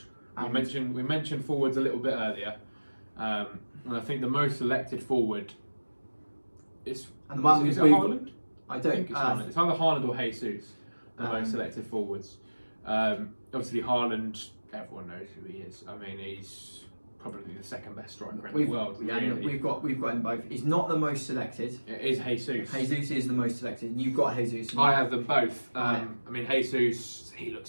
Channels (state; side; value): inverted; both; correlation -1.00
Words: We mentioned forwards a little bit earlier, and I think the most selected forward is it Haaland? I think it's Haaland. It's either Haaland or Jesus, the most selected forwards. Obviously Haaland, everyone knows who he is. I mean, he's probably the second best striker in the world. Yeah, really. we've got him both. He's not the most selected. It is Jesus. Jesus is the most selected, and you've got Jesus. I have them both. I mean, Jesus, he